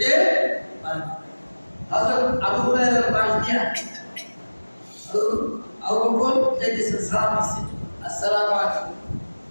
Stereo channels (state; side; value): inverted; both; correlation -1.00